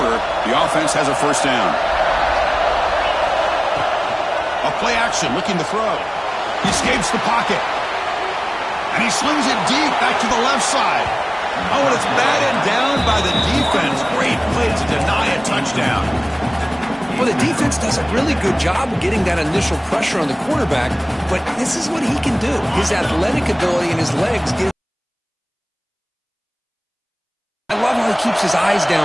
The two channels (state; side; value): identical; both; correlation 1.00